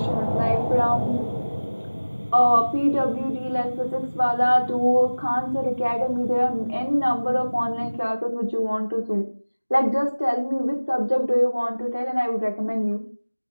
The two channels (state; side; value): inverted; both; correlation -1.00